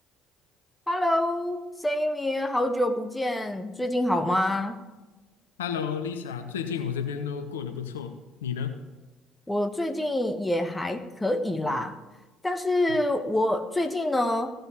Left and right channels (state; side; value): normal; both; correlation 0.79